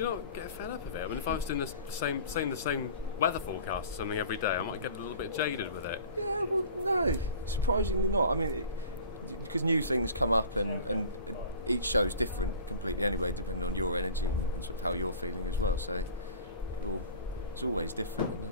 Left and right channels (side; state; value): both; inverted; correlation -0.43